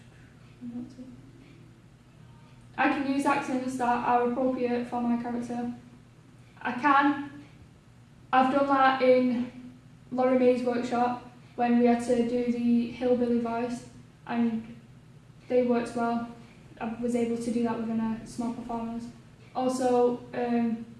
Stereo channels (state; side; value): identical; both; correlation 1.00